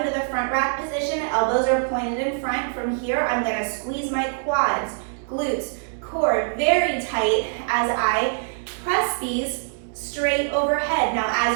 the front rack position. Elbows are pointed in front. From here, I'm going to squeeze my quads, glutes, core very tight as I press these straight overhead. Now,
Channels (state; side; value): silent; left; digital silence